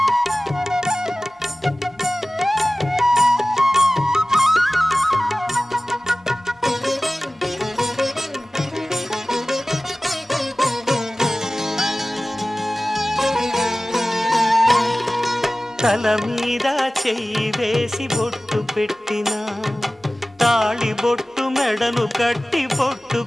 తల మీద చెయ్యి వేసి బొట్టు పెట్టినా తాళి బొట్టు మెడను కట్టి బొట్టు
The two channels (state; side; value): normal; both; correlation 0.97